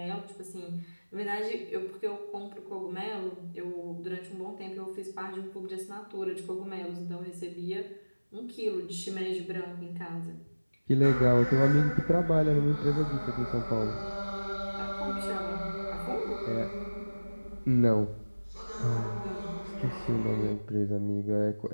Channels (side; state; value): both; inverted; correlation -1.00